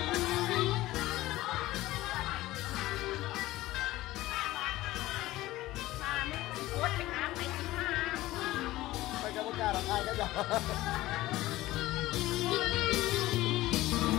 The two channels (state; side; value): quieter; right; 17.1 dB